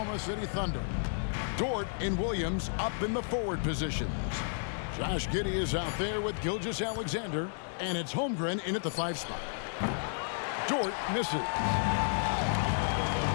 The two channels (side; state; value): right; silent; digital silence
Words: City Thunder. Dort and Williams up in the forward positions. Josh Giddey is out there with Gilgeous-Alexander, and it's Holmgren in at the 5 spot. Dort misses.